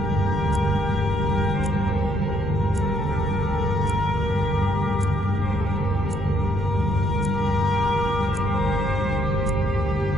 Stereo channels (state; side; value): normal; both; correlation 0.70